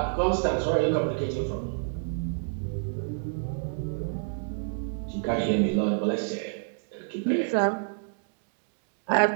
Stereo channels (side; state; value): left; silent; digital silence